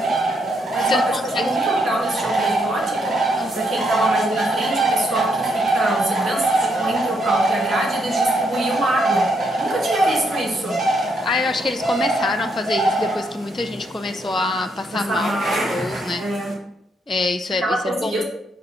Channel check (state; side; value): normal; both; correlation 0.76